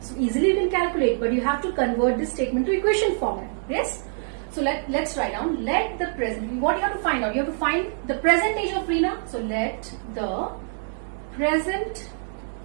So easily you can calculate, but you have to convert this statement to equation format. Yes. So let's write down, let the present, what you have to find out? You have to find the present age of Reena. So let the present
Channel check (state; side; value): silent; left; 62 dB below the other